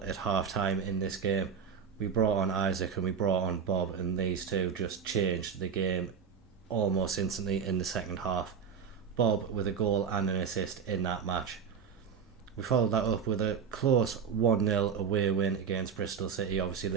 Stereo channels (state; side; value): quieter; left; 6.7 dB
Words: at half time in this game. We brought on Isaac and we brought on Bob, and these two just changed the game almost instantly in the second half. Bob with a goal and an assist in that match. We followed that up with a close 1-0 away win against Bristol City. Obviously